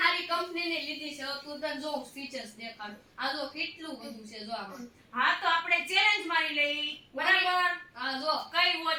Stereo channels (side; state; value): both; identical; correlation 1.00